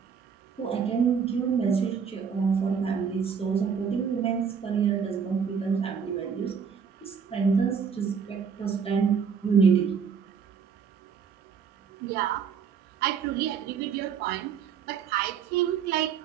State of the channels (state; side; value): quieter; left; 6.6 dB